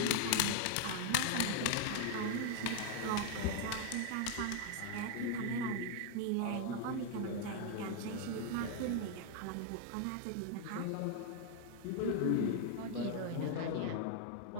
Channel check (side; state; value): both; different; correlation 0.00